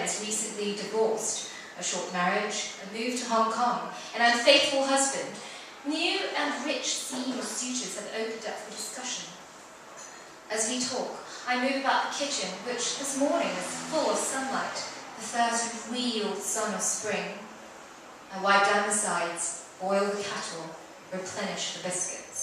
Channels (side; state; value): both; identical; correlation 1.00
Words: is recently divorced, a short marriage, a move to Hong Kong, an unfaithful husband, new and rich senior suitors have opened up for discussion. As we talk, I move about the kitchen, which this morning is full of sunlight, the first real sun of spring. I wipe down the sides, boil the cattle, replenish the